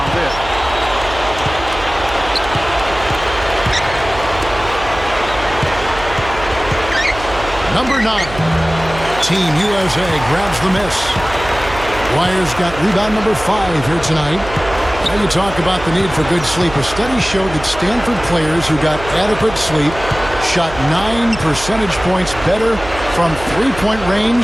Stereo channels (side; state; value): right; noise; hum, 12 dB below the sound